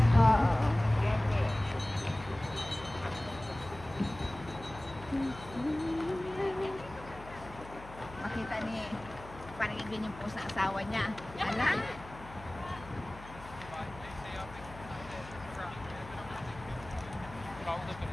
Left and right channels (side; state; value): left; noise; hum, 16 dB below the sound